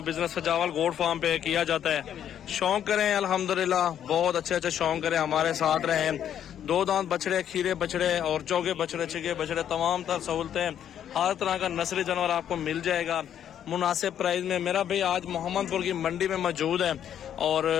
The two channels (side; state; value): right; quieter; 9.8 dB